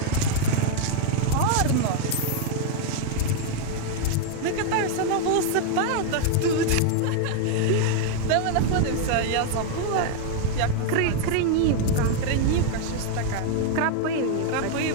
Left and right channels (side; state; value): both; different; correlation 0.00